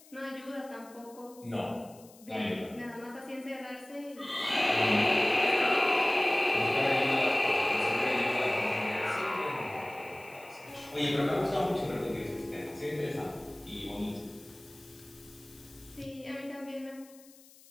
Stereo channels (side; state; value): left; noise; hiss, 24 dB below the sound